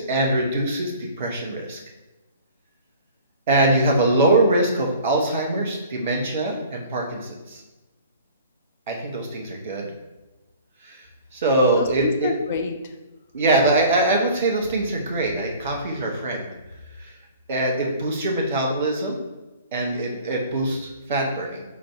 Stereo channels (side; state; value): both; inverted; correlation -0.46